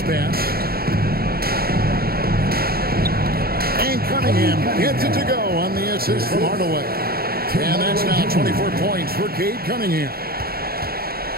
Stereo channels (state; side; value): late; left; 0.44 ms